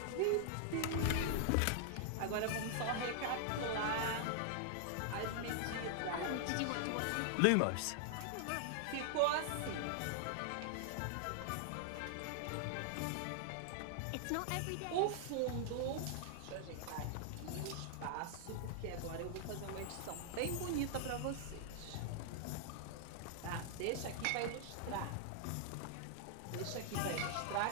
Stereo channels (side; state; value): both; different; correlation -0.01